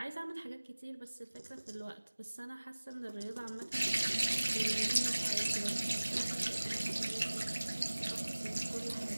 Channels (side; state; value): both; inverted; correlation -1.00